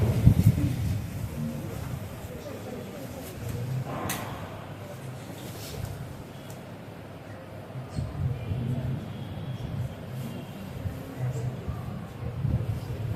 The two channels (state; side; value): identical; both; correlation 1.00